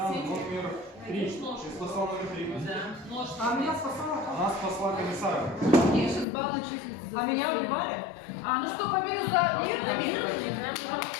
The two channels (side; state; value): right; drops out; at 6.2 s